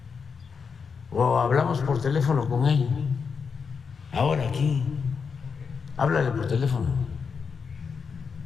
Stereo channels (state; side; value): quieter; right; 5.8 dB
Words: O hablamos por teléfono con él. Ahora aquí. Háblale por teléfono.